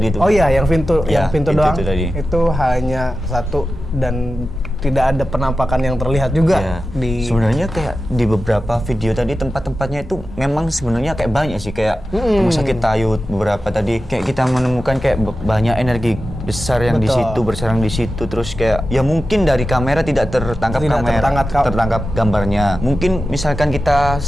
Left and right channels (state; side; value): normal; both; correlation 0.93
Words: itu. Oh iya, yang pintu Ya, yang pintu pintu doang. itu tadi. Itu hanya satu dan tidak ada penampakan yang terlihat juga Ya, di sebenarnya kayak di beberapa video tadi tempat-tempatnya itu memang sebenarnya kayak banyak sih, kayak rumah sakit Tayut beberapa tadi kayak kita menemukan kayak banyak energi besar yang di Betul. situ bersarang di situ, terus kayak ya mungkin dari kamera tidak tertangkap tertangkap gambarnya. Mungkin misalkan kita